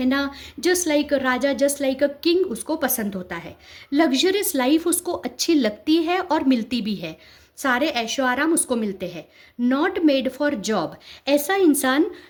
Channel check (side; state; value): both; identical; correlation 1.00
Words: just like a Raja, just like a king उसको पसंद होता है। लग्जरियस लाइफ उसको अच्छी लगती है और मिलती भी है, सारे ऐशो आराम उसको मिलते हैं। नॉट मेड फॉर जॉब, ऐसा इंसान